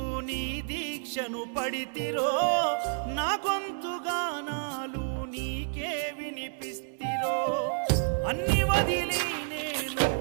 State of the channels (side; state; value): left; silent; 58 dB below the other